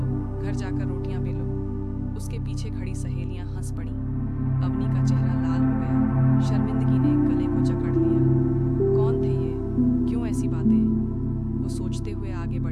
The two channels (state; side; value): identical; both; correlation 1.00